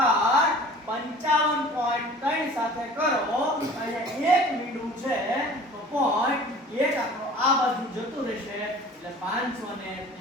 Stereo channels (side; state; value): both; normal; correlation 0.45